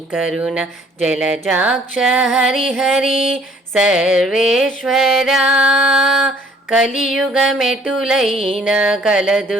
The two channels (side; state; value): both; normal; correlation 0.58